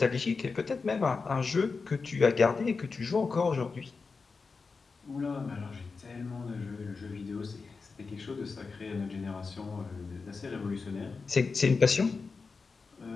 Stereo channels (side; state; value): right; quieter; 4.6 dB